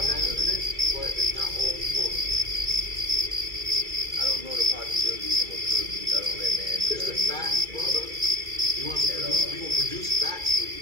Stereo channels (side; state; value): left; late; 2.3 ms